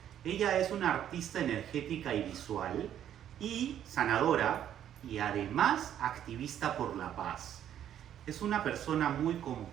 Ella es una artista energética y visual y sanadora y además activista por la paz. Es una persona muy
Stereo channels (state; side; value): quieter; left; 10.4 dB